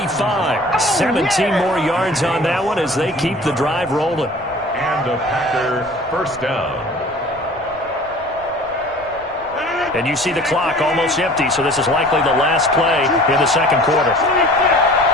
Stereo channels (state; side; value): noise; right; rumble, 24 dB below the sound